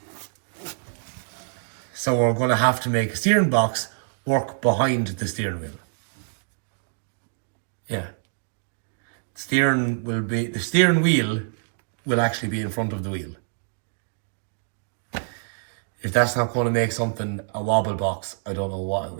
So we're going to have to make a steering box work behind the steering wheel. Yeah. The steering wheel will actually be in front of the wheel. If that's not going to make something a wobble box, I don't know what it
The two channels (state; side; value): silent; left; digital silence